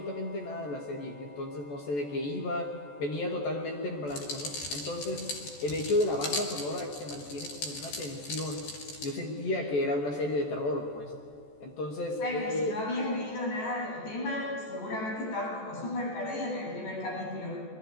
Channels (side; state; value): right; late; 14 ms